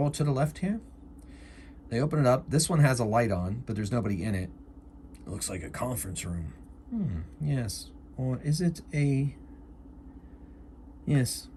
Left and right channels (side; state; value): both; identical; correlation 1.00